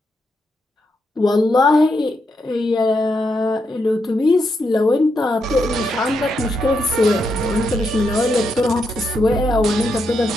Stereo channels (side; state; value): both; normal; correlation 0.82